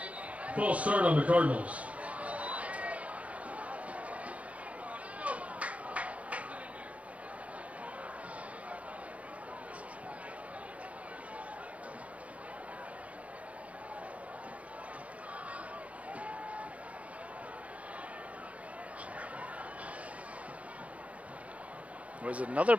False start on the Cardinals. There was another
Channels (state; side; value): late; left; 0.065 ms